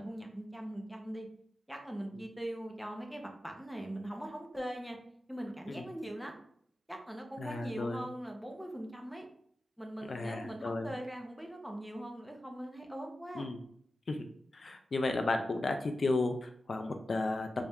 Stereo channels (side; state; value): both; normal; correlation 0.93